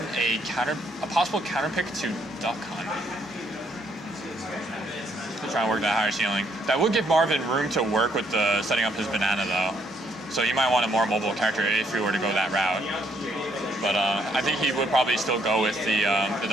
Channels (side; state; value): both; normal; correlation 0.70